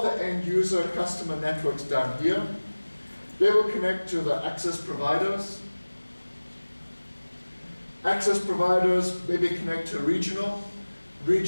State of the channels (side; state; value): both; inverted; correlation -1.00